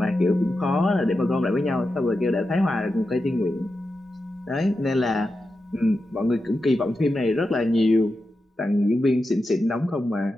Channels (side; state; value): both; normal; correlation 0.90